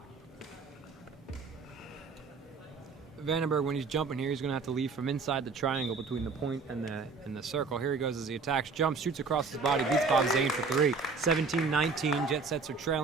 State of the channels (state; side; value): quieter; left; 4.5 dB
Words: Vandenberg, when he's jumping here, he's going to have to leave from inside the triangle between the point and the circle. Here he goes as he attacks, jumps, shoots across his body, beats Bob Zane for 3. 17-19. Jet Sets are